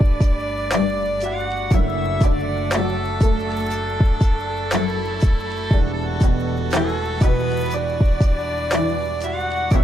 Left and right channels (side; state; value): both; normal; correlation 0.84